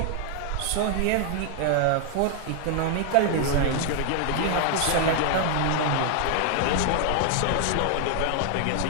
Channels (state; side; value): different; both; correlation 0.00